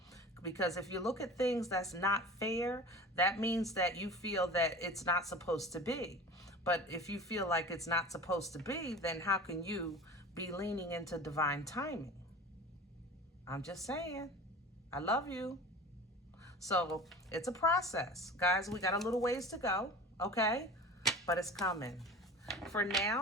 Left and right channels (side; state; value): both; normal; correlation 0.36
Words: Because if you look at things that's not fair, that means that you feel that it's not supposed to be. But if you feel like it's not supposed to be, then how can you be leaning into divine timing? I'm just saying. I love you. So it's a process. Guys, we got a little ways to go, okay? But it's coming. For